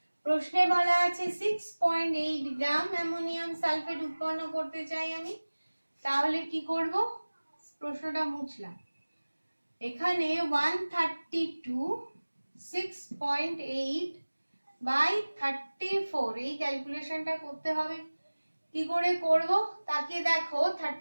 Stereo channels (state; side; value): inverted; both; correlation -1.00